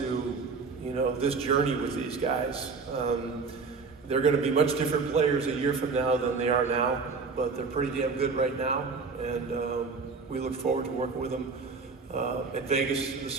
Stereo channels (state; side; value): quieter; left; 4.6 dB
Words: this journey with these guys. They're going to be much different players a year from now than they are now, but they're pretty damn good right now. And we look forward to working with them at Vegas, the